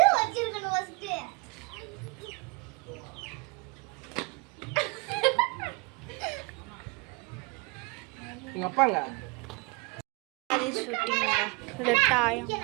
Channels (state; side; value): quieter; left; 28.2 dB